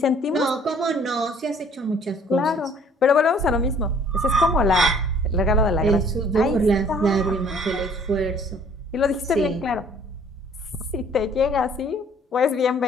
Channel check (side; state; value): both; normal; correlation 0.57